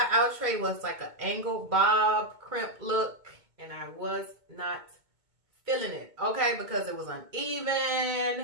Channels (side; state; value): left; late; 2.2 ms